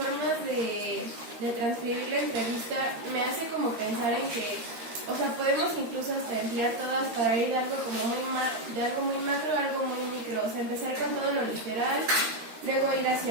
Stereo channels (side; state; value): left; late; 13 ms